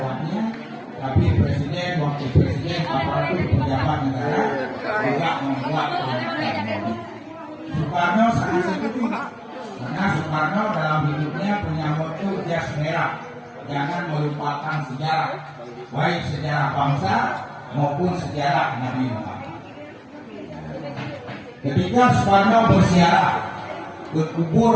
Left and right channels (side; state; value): both; identical; correlation 1.00